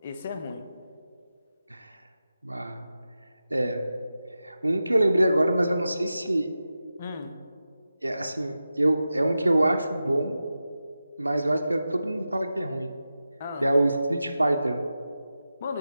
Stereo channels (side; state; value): both; inverted; correlation -0.92